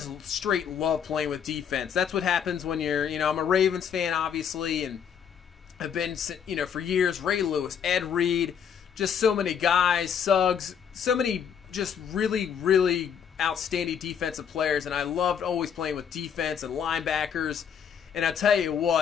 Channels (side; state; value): right; quieter; 7.8 dB